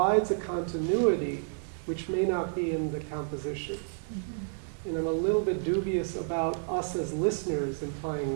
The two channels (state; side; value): silent; left; 58 dB below the other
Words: a continuity which may not be in the composition. And I'm a little bit dubious about us as listeners